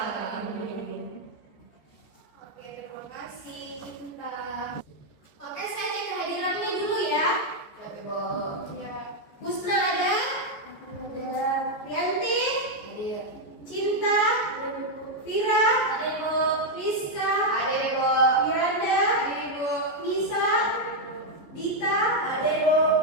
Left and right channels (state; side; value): late; right; 14 ms